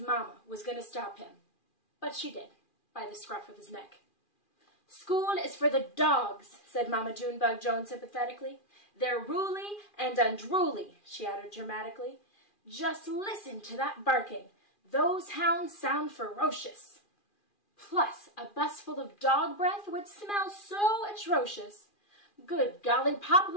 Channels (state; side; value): late; right; 2.4 ms